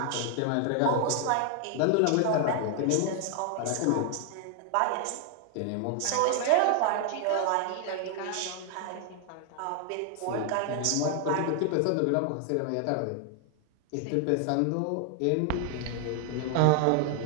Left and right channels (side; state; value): both; different; correlation 0.00